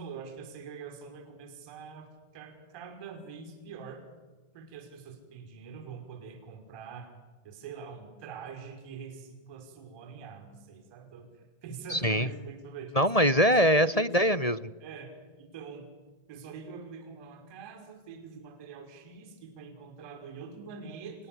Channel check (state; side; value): late; right; 1.7 ms